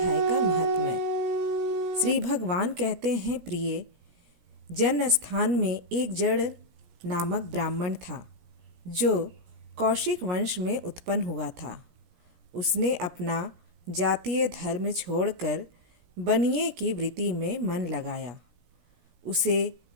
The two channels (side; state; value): left; late; 17 ms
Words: का महात्म्य। श्री भगवान कहते हैं, प्रिय जन स्थान में एक जड़ नामक ब्राह्मण था जो कौशिक वंश में उत्पन्न हुआ था। उसने अपना जातीय धर्म छोड़कर बनिए की वृत्ति में मन लगाया। उसे